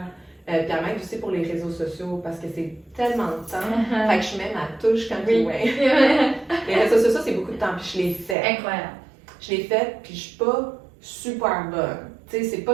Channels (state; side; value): drops out; left; at 8.3 s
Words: Puis elle m'aide aussi pour les réseaux sociaux parce que c'est tellement de temps. Fait que je mets ma touche comme les réseaux sociaux, c'est beaucoup de temps, puis je l'ai fait. Incroyable. Je l'ai fait, puis je suis pas super bonne. Tu sais, c'est